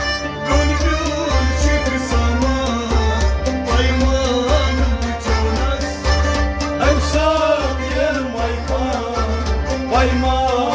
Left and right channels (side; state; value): both; identical; correlation 1.00